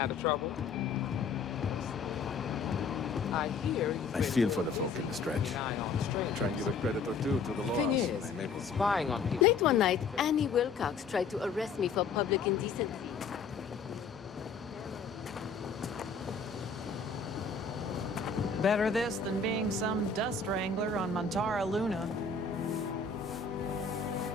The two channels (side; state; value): right; quieter; 4.9 dB